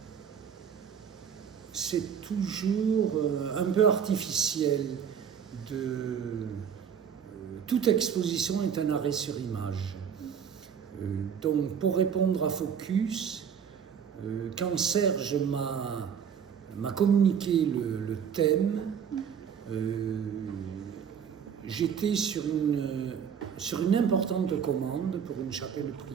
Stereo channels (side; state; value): left; quieter; 7.6 dB